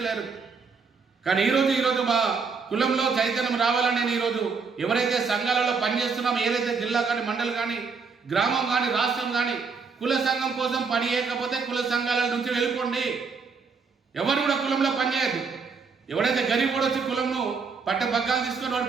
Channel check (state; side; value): quieter; left; 5.1 dB